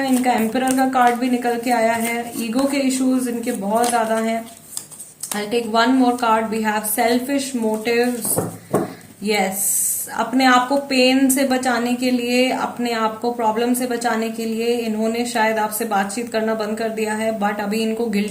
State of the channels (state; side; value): identical; both; correlation 1.00